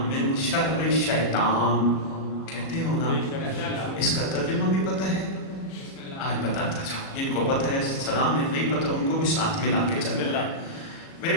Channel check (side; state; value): right; late; 37 ms